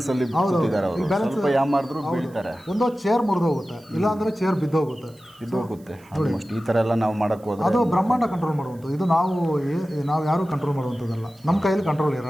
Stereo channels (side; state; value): right; noise; hiss, 29 dB below the sound